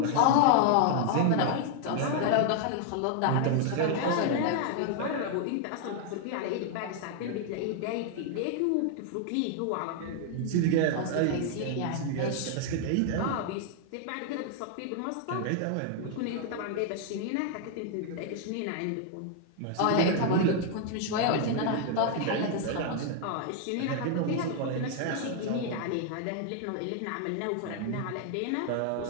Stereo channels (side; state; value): both; different; correlation 0.00